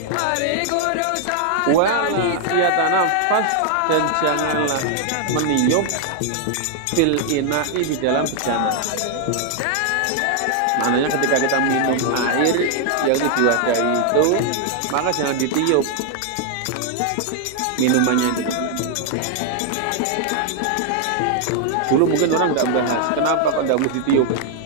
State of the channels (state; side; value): different; both; correlation 0.00